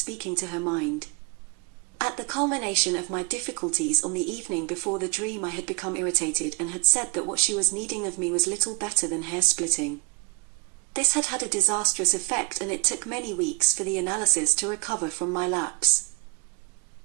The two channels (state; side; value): quieter; left; 31.3 dB